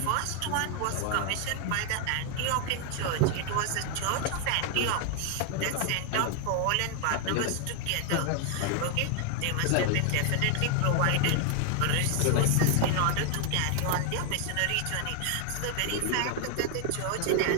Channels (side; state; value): both; different; correlation 0.00